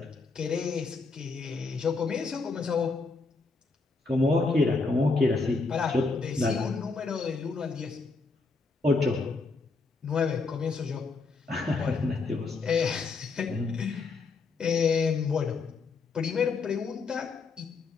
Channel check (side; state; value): right; quieter; 4.0 dB